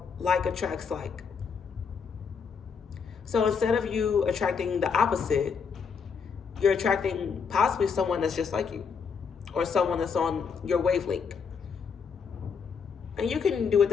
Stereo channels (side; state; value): right; quieter; 6.0 dB